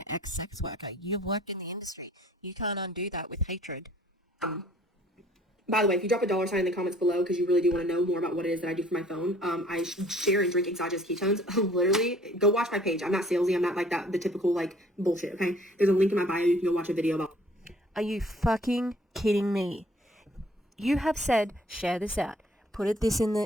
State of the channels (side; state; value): both; normal; correlation 0.56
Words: ex-sex worker. You've worked in the industry. You can't undo that with hatred. By the way, if you drop a $sign in the comments below because you really do want to know more about what it is that I do for my phone, I share and drink exogenous ketones. Literally, go watch my page. I'm not salesy. I'm not like that, the typical, like, bullshit, okay? There's a link in my bio. You can go watch a video about. Are you fucking kidding me? You have said, share this out. Put this in